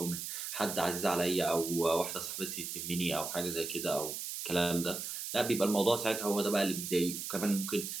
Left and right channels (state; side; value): noise; right; hiss, 5 dB below the sound